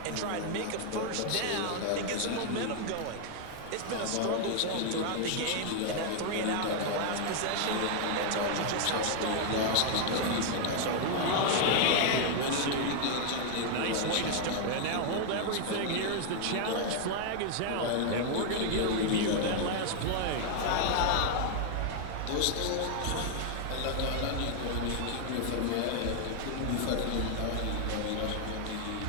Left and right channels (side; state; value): both; different; correlation 0.00